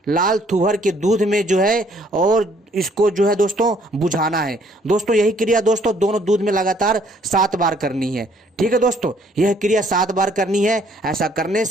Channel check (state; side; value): normal; both; correlation 0.63